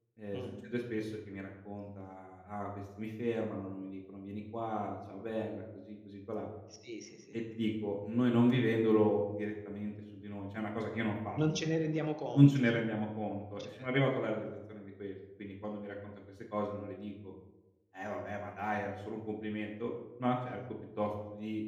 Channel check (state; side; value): identical; both; correlation 1.00